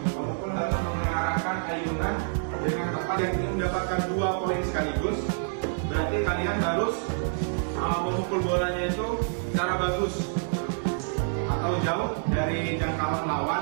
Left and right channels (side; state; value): left; silent; digital silence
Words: Pemukul harus mengarahkan ayunan dengan tepat. Yang ingin mendapatkan 2 poin sekaligus, berarti kalian harus memukul bolanya itu secara bagus atau jauh dari jangkauan